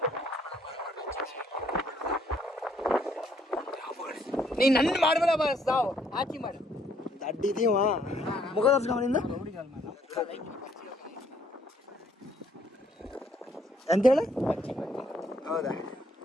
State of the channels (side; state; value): both; normal; correlation 0.66